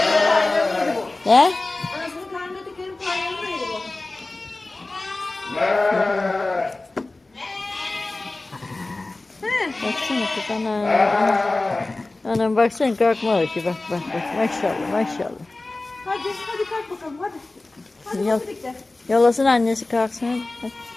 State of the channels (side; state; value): right; quieter; 3.1 dB